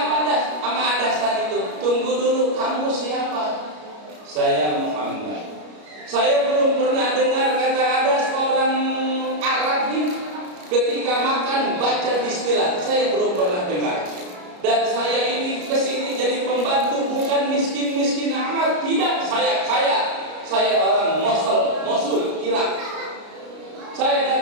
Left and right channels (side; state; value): left; late; 33 ms